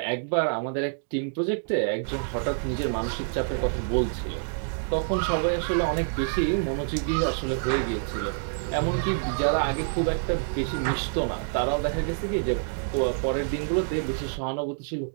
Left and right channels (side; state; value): left; silent; digital silence